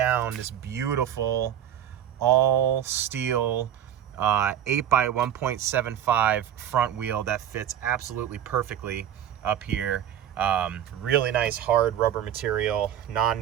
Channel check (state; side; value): quieter; left; 10.4 dB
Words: this beautiful all steel 8x1.75 front wheel that fits absolutely perfectly up here. Really nice hard rubber material,